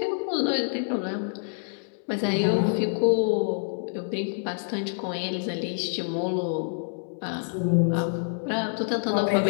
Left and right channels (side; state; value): right; silent; 60 dB below the other